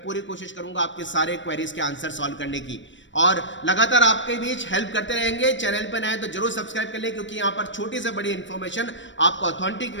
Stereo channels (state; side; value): late; right; 0.54 ms